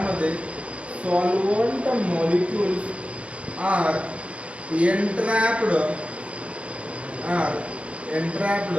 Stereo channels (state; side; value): late; left; 0.062 ms